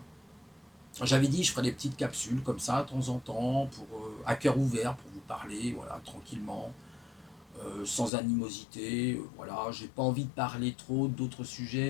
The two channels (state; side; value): drops out; right; at 8.1 s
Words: J'avais dit, je ferais des petites capsules comme ça, de temps en temps, à cœur ouvert, pour vous parler, voilà, tranquillement, sans animosité. Voilà, j'ai pas envie de parler trop d'autres